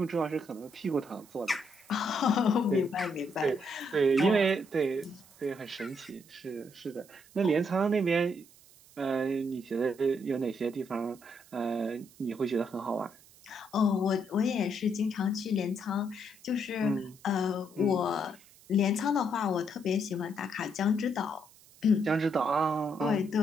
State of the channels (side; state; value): right; noise; hiss, 25 dB below the sound